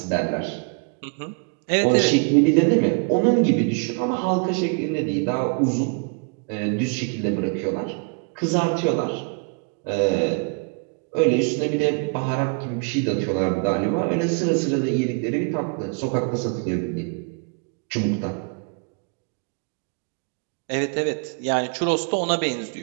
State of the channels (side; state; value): left; quieter; 36.1 dB